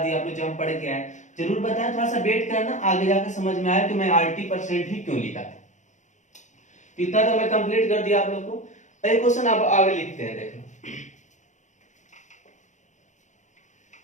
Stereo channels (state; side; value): late; right; 0.35 ms